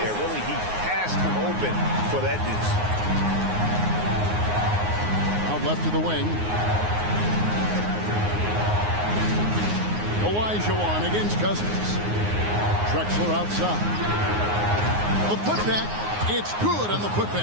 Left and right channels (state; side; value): late; left; 9.6 ms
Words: Really, he passed him open for that deuce. Out left to the wing. Olajuwon against Cousins. Drexler outside. The putback. It's good on the